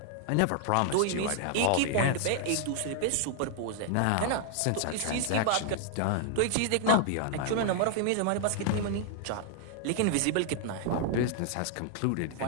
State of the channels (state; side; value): different; both; correlation 0.00